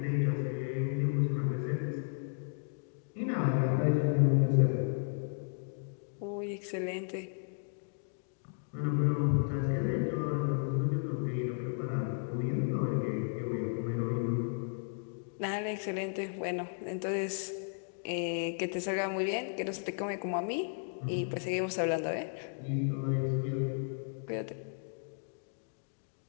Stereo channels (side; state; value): right; silent; digital silence